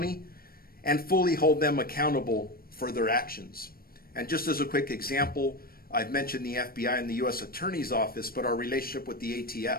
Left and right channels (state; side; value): late; right; 0.43 ms